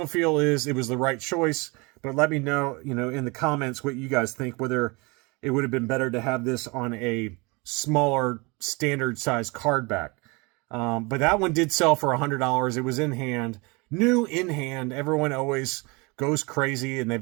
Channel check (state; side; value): quieter; left; 27.3 dB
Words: feel is it was the right choice, but let me know, you know, in the comments what you guys think, whether it would have been better to have this on a smaller standard size card back. But that one did sell for $100. It was in hand, new in hand. Everyone always goes crazy and